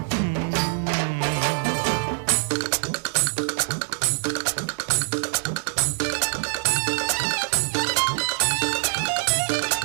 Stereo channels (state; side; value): silent; left; digital silence